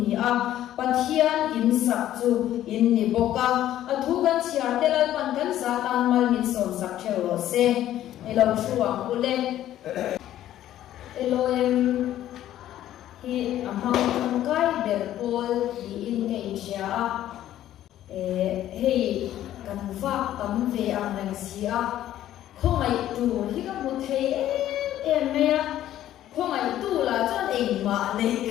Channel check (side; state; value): right; quieter; 12.6 dB